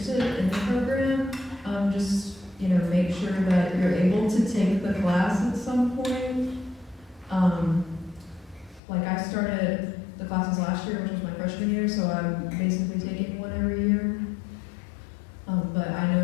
in the program, just, make sure that you're able to take the class at some point. Like I started the classes last year, which was my freshman year, so I'm basically taking one every year. But I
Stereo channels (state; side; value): drops out; right; at 8.8 s